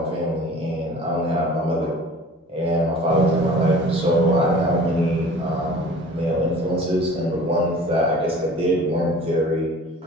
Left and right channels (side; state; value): both; normal; correlation 0.45